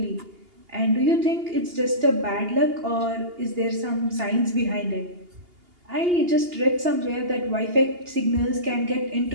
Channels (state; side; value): late; left; 2.8 ms